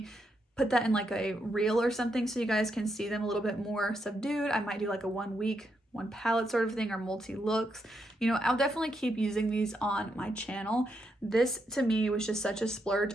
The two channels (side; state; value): both; normal; correlation 0.81